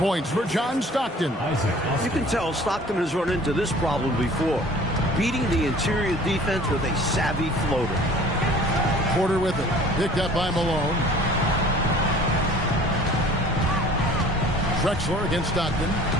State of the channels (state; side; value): normal; both; correlation 0.48